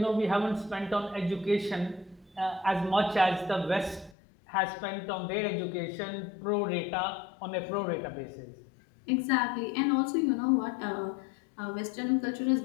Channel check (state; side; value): drops out; right; at 4.2 s